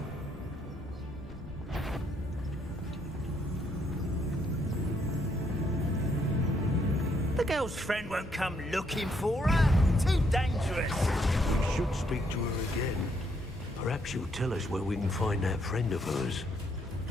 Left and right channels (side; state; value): both; normal; correlation 0.72